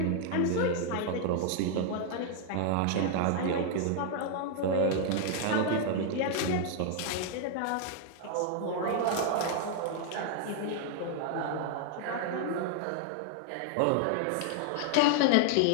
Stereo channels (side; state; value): both; different; correlation 0.00